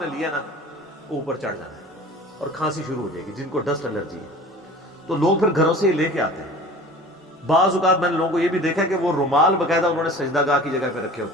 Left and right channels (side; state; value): both; normal; correlation 0.42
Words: نے لیا نا, اوپر چڑھ جانا ہے اور کھانسی شروع ہو جائے گی. جن کو ڈسٹ الرجی ہے تو لوگ پھر گھروں سے ہی لے کے آتے ہیں. بعض اوقات میں نے لوگوں کو یہ بھی دیکھا کہ وہ رومال باقاعدہ انہوں نے سجدہ گاہ کی جگہ پہ رکھے